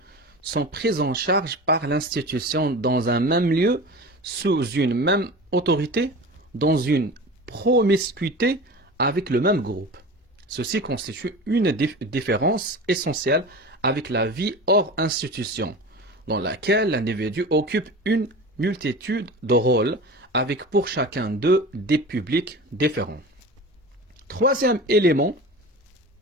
sont pris en charge par l'institution dans un même lieu, sous une même autorité, dans une promiscuité avec le même groupe. Ceci constitue une différence essentielle avec la vie hors institution, dans laquelle l'individu occupe une multitude de rôles, avec pour chacun d'eux des publics différents. Troisième élément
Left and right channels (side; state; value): both; normal; correlation 0.33